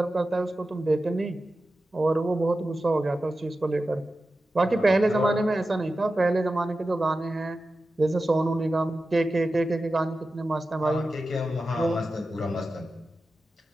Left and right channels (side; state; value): both; normal; correlation 0.93